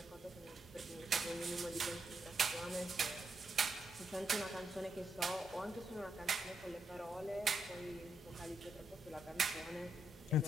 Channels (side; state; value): both; normal; correlation 0.81